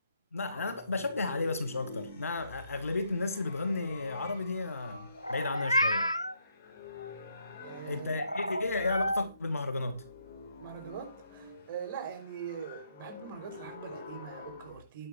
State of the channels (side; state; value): both; inverted; correlation -0.75